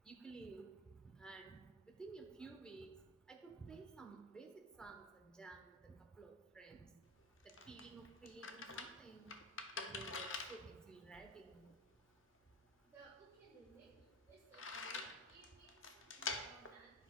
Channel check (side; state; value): both; normal; correlation 0.23